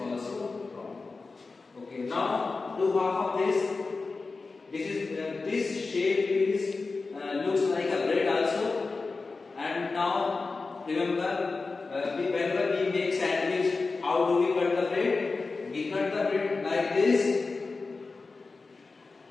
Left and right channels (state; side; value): quieter; right; 4.0 dB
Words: wrong. Okay, now do half of this. This shape is looks like a bread also. And now remember, whenever we make sandwich, how do we cut the bread? We cut the bread like this.